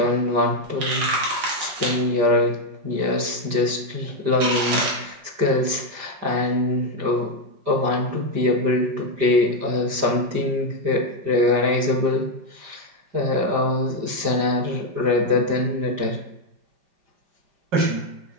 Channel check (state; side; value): late; left; 5.0 ms